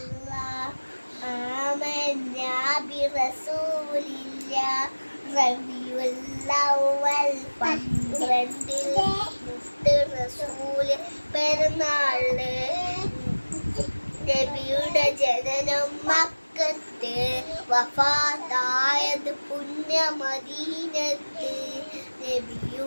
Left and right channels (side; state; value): both; inverted; correlation -1.00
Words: ആമന്നാ ബിറസൂലില്ലാഹ്. റബീഉൽ അവ്വൽ 12 മുത്ത് റസൂല് പെരുന്നാള്. നബിയുടെ ജനനം മക്കത്ത്, വഫാത്തായത് പുണ്യ മദീനത്ത്.